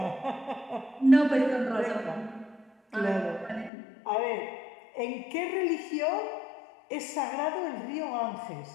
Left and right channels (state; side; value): drops out; right; at 3.7 s